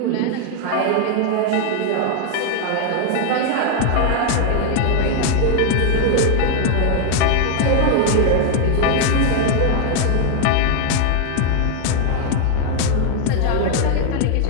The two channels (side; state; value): both; different; correlation 0.00